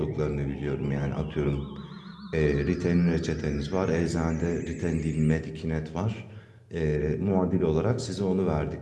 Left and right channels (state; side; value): identical; both; correlation 1.00